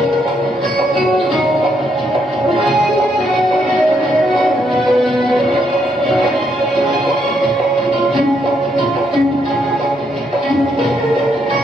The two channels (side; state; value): both; normal; correlation 0.76